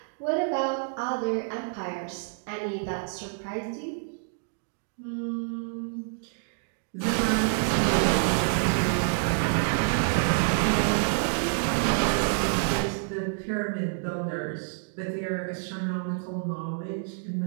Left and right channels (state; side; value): silent; left; digital silence